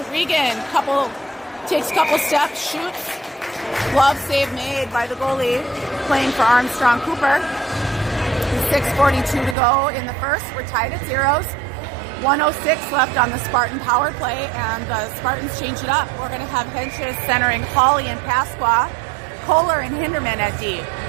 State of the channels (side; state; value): left; drops out; at 9.6 s